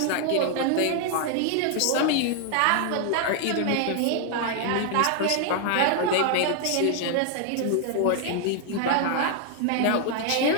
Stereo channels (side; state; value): both; different; correlation 0.00